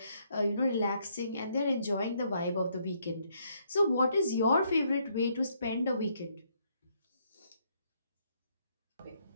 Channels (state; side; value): inverted; both; correlation -0.71